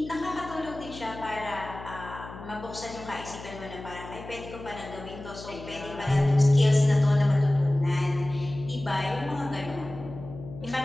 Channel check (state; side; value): noise; left; hum, 14 dB below the sound